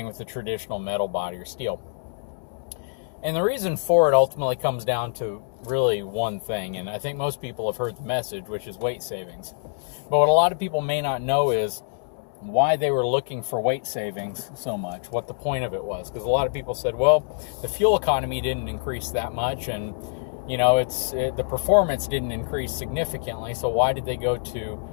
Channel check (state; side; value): silent; right; digital silence